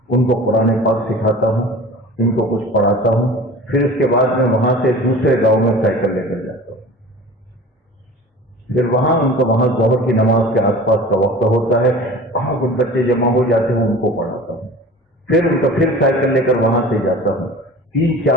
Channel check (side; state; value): both; normal; correlation 0.39